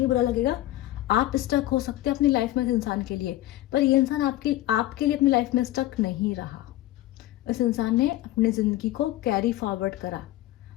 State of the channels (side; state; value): right; quieter; 15.5 dB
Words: बुरा लगेगा, आप स्टक हो सकते हैं अपनी लाइफ में इस इंसान के लिए, पर ये इंसान आपके लिए अपनी लाइफ में स्टक नहीं रहा। इस इंसान ने अपनी ज़िंदगी को कैरी फॉरवर्ड करा,